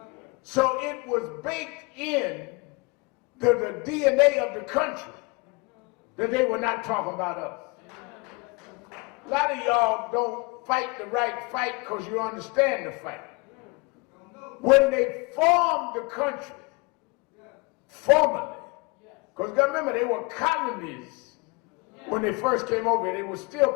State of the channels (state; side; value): quieter; right; 28.1 dB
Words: So it was baked in the DNA of the country that they were not talking about us. A lot of y'all don't fight the right fight because you understand the fight. When they formed the country, formally, because remember, they were colonies when they first came over here. They were still